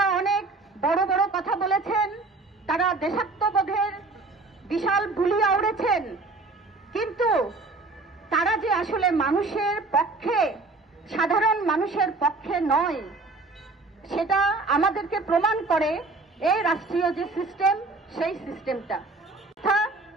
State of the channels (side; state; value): left; quieter; 3.5 dB